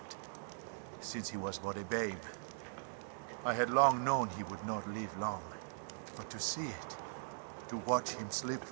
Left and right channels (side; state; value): left; silent; digital silence